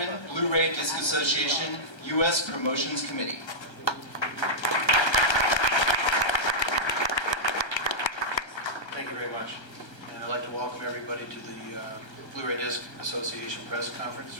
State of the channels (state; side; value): late; right; 1.3 ms